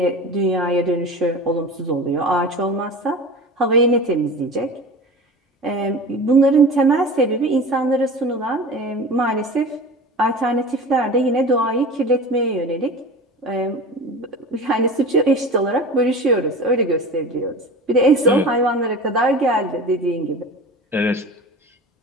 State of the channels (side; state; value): both; normal; correlation 0.34